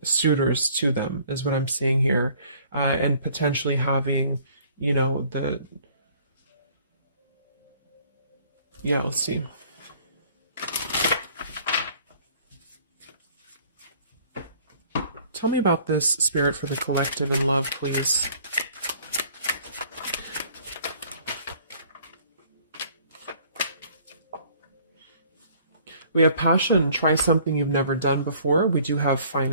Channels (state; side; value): inverted; both; correlation -0.56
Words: suitors to them, is what I'm seeing here. And potentially having, you know, yeah, let's see. Tell me about this, Spirit, for the collective in love, please. We have passion. Try something you've never done before. We do have